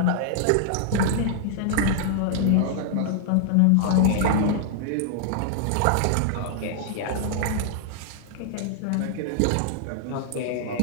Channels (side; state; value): both; different; correlation 0.00